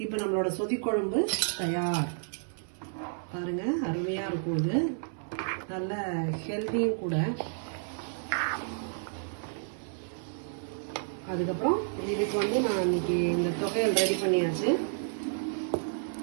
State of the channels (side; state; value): left; silent; 57 dB below the other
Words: இப்போ நம்மளோட சொதிக்குழம்பு தயார். பாருங்க, அருமையா இருக்கும். இது நல்ல ஹெல்தியும் கூட. அதுக்கப்புறம் இதுக்கு வந்து நான் இன்னைக்கு இந்த தொகையல் ரெடி பண்ணியாச்சு.